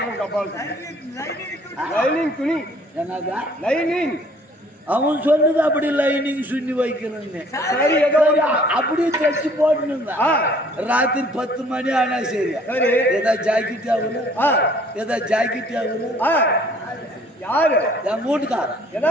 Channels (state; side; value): normal; both; correlation 0.57